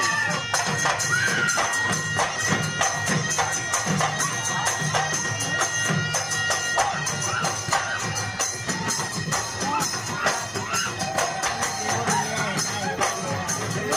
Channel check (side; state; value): both; identical; correlation 1.00